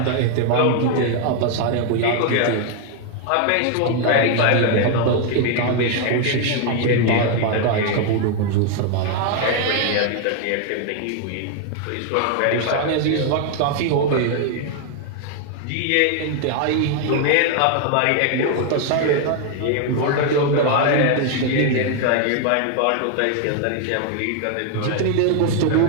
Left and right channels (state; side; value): different; both; correlation 0.00